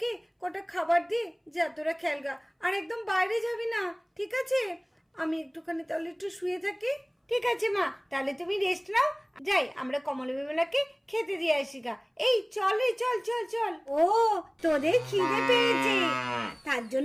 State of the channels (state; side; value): identical; both; correlation 1.00